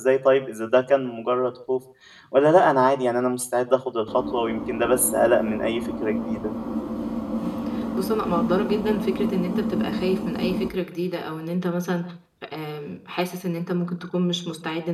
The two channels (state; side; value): identical; both; correlation 1.00